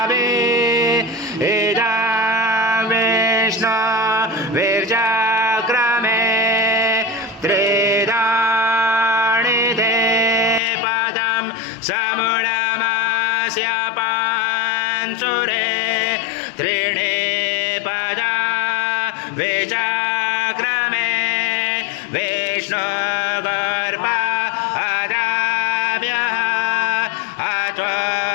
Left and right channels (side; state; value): right; drops out; at 10.6 s